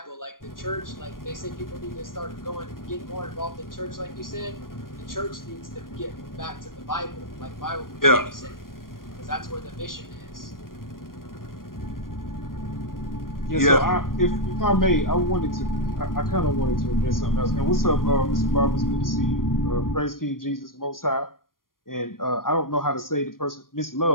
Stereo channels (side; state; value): right; late; 0.91 ms